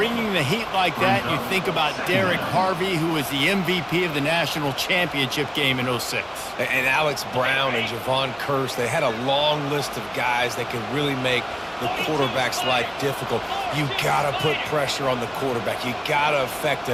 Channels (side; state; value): both; identical; correlation 1.00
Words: the heat like that, and you think about Derek Harvey, who was the MVP of the national championship game in '06. And Alex Brown and Javon Curse, they had a long list of guys that could really make the quarterback's life difficult. You got to put pressure on the quarterback. You got to affect